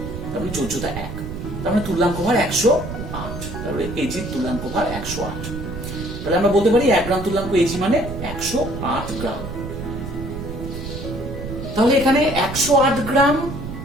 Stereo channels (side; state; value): right; noise; rumble, 8 dB below the sound